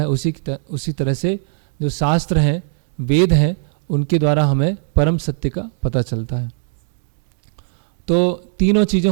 उसी तरह से जो शास्त्र हैं, वेद हैं, उनके द्वारा हमें परम सत्य का पता चलता है। तो तीनों चीज़ें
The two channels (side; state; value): left; silent; digital silence